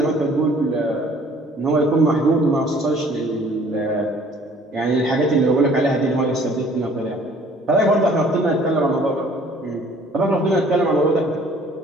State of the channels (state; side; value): normal; both; correlation 0.55